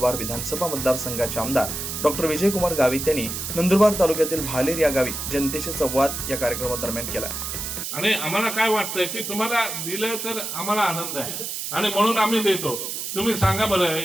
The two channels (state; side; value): noise; right; hiss, 5 dB below the sound